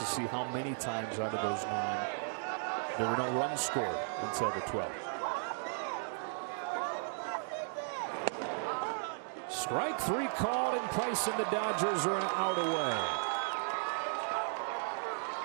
see how many times out of those 9 there were no runs scored until the 12th. Strike 3 called, and Price and the Dodgers are out away.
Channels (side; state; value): left; silent; digital silence